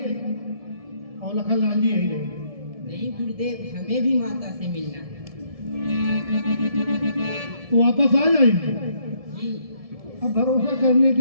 और लखनलाल जी यही रहेंगे। नहीं गुरुदेव, हमें भी माता से मिलना है। तो वापस आ जाएंगे। अब भरोसा करने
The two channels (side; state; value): left; late; 1.7 ms